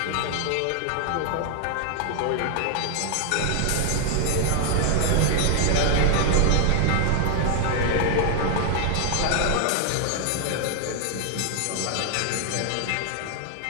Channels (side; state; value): both; different; correlation 0.00